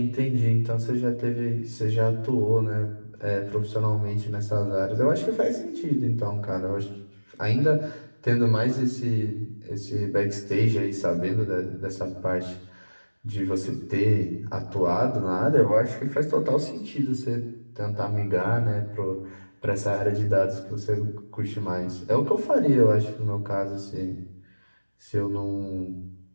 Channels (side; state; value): both; inverted; correlation -1.00